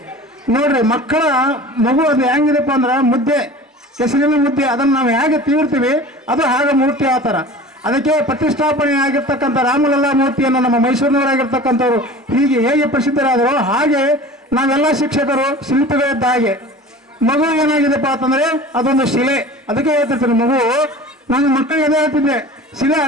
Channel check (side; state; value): both; normal; correlation 0.40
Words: ನೋಡ್ರಿ, ಮಕ್ಕಳ ಮಗು ಅದು ಹೆಂಗಿದೆಪ್ಪ ಅಂದ್ರೆ ಮುದ್ದೆ, ಕೆಸರಿನ ಮುದ್ದೆ, ಅದನ್ನು ನಾವು ಹೇಗೆ ತೀರ್ತೀವಿ ಅದು ಹಾಗೆ ಮೂರ್ತಿ ಆ ಥರ. ಅದಕ್ಕೆ ಪ್ರತಿಷ್ಠಾಪನೆ ಆಗಿರ್ತಕ್ಕಂಥ ರಾಮಲಲ್ಲಾ ಮೂರ್ತಿಯನ್ನು ನಮ್ಮ ಮೈಸೂರಿನವರಾಗಿರ್ತಕ್ಕಂಥವ್ರು ಹೀಗೆ ಹೇಗೆ ಪ್ರಸಿದ್ಧರಾದರೂ ಹಾಗೆ ನಾವೆಲ್ಲ ಶಿಕ್ಷಕರು ಶಿಲ್ಪಿಗಳಿದ್ದ ಹಾಗೆ. ಮಗು ಏನಾಗಿದೆಪ್ಪ ಅಂತಂದ್ರೆ ಅದೊಂದು ಶಿಲೆ. ಅದಕ್ಕೆ ಹೇಳ್ತಿರ್ತೀನಿ, ಮಗು ನಾನು ಮಕ್ಕಳಿಗೆ ಅದೇ ಹೇಳ್ತಿದ್ದೆ, ಶಿಲೆ